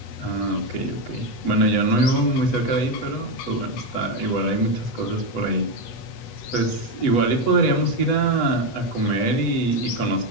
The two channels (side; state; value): right; late; 8.1 ms